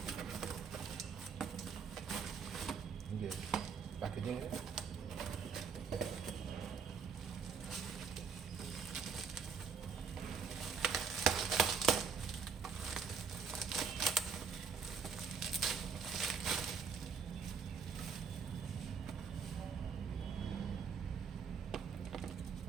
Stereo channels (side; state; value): left; quieter; 6.0 dB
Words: ये पैकेजिंग है।